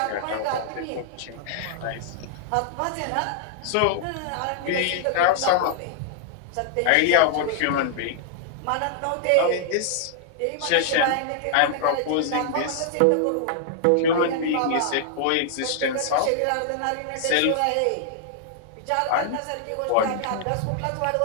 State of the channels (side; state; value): both; different; correlation -0.01